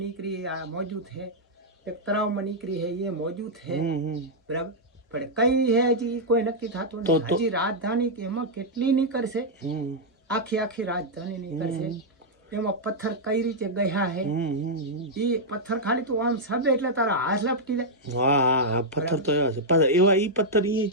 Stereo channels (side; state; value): both; normal; correlation -0.05